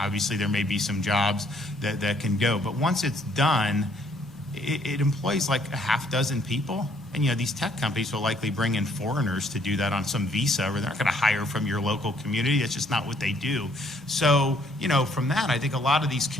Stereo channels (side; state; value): both; normal; correlation 0.65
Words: Obviously, there may be some jobs that can go. But once it's done, it employs like a half dozen people. And, these tech companies will likely bring in foreigners to do that on some visa, or they're not going to hire from your local community. That's just not what they do. So, from that, I think a lot of these